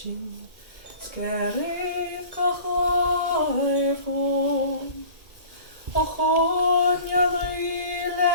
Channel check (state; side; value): late; left; 1.8 ms